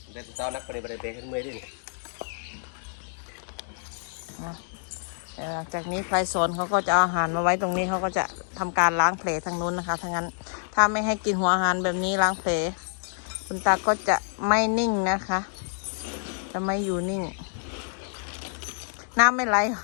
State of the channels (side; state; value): right; silent; 60 dB below the other